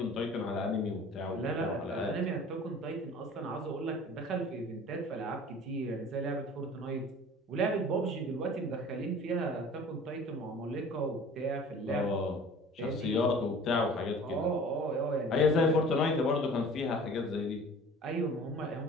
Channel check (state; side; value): normal; both; correlation 0.45